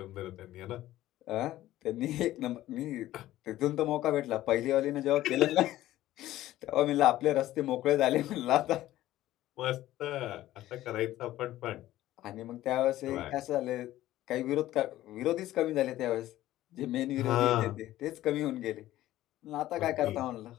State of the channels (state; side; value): quieter; right; 14.8 dB